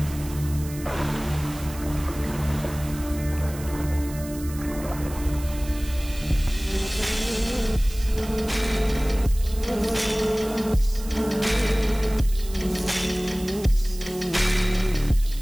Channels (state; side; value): noise; right; hiss, 16 dB below the sound